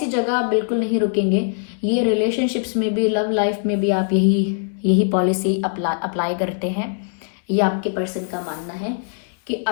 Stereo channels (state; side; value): silent; right; 65 dB below the other